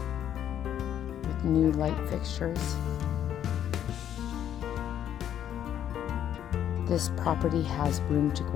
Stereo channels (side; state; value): right; quieter; 10.2 dB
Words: with new light fixtures. This property has room to